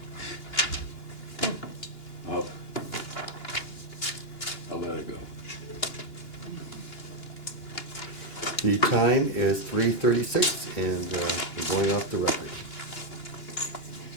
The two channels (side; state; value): right; late; 2.9 ms